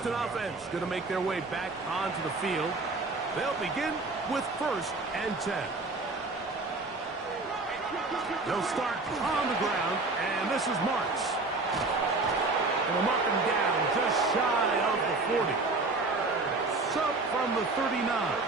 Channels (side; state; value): left; quieter; 3.4 dB